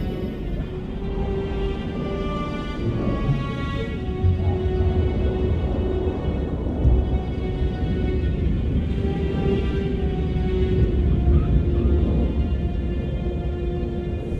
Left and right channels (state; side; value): identical; both; correlation 1.00